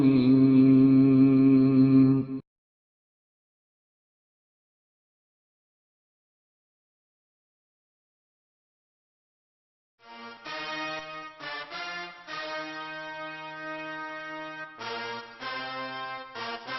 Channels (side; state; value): both; identical; correlation 1.00